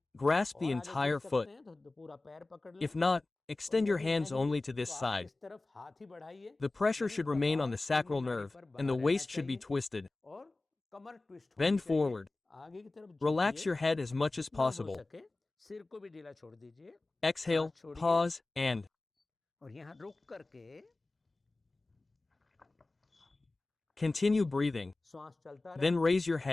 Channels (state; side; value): quieter; right; 3.1 dB